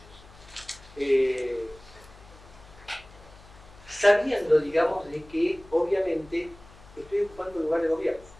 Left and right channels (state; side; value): noise; left; hum, 22 dB below the sound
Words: Sabiendo, digamos, de que obviamente estoy ocupando un lugar de gobierno,